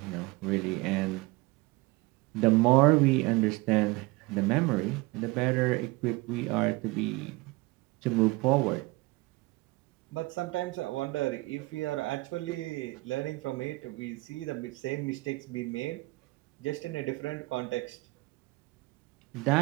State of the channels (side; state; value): left; quieter; 22.9 dB